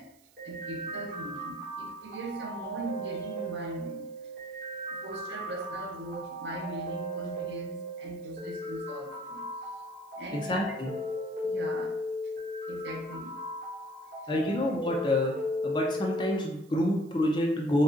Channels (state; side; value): noise; right; hiss, 29 dB below the sound